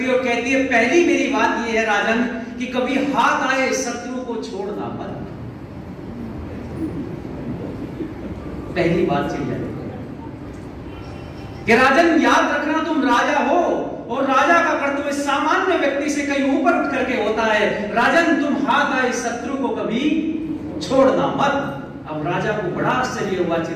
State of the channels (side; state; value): both; identical; correlation 1.00